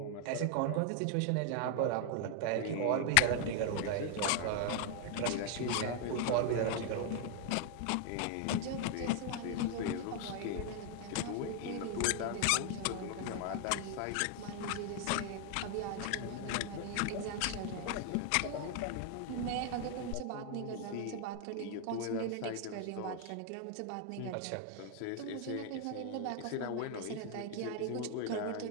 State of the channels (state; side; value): different; both; correlation 0.00